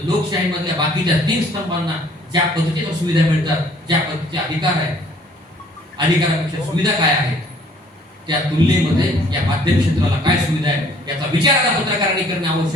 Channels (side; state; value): both; normal; correlation 0.58